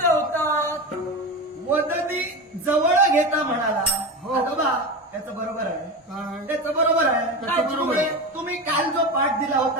होता. वदनी जवळ घेता म्हणाला. हो बा त्याचं बरोबर आहे. त्याचं बरोबर आहे. तुम्ही काल जो पाठ दिला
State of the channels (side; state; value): both; normal; correlation 0.24